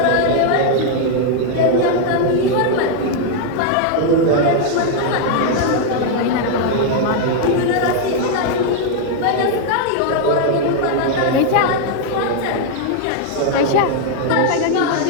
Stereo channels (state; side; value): different; both; correlation 0.00